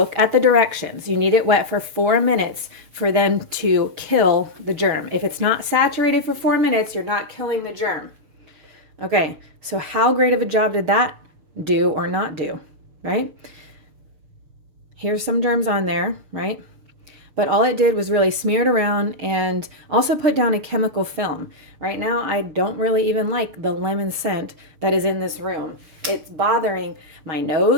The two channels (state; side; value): late; left; 6.7 ms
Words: at the directions. You need it wet for 4 minutes for them to kill the germ. If it's not saturated for 4 minutes, you're not killing the germ. Okay, so how great of a job did that do or not do, right? Here's some germs on there, right? But all it did was really smear it around and also put down a chemical film. Right now, I don't really even like the lemon scent that is in this room. It's bothering my